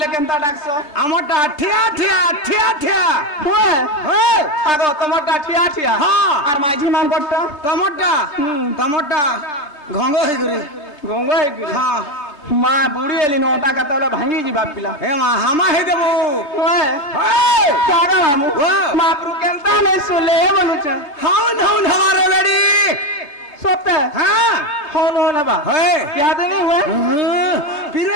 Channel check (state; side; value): late; right; 3.3 ms